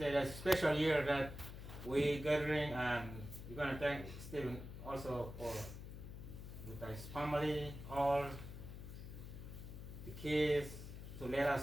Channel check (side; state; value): left; noise; hum, 10 dB below the sound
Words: it's a special year that we gathering, and we're gonna thank Stephen also for with his family, all the kids, to let